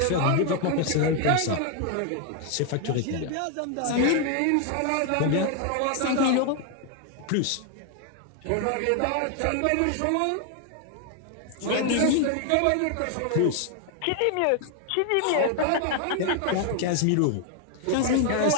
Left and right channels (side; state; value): both; different; correlation 0.00